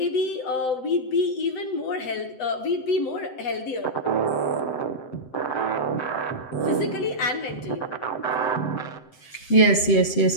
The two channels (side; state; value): right; late; 7.8 ms